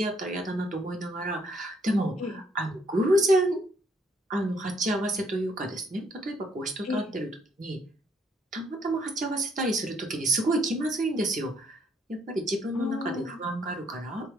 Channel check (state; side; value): normal; both; correlation 0.68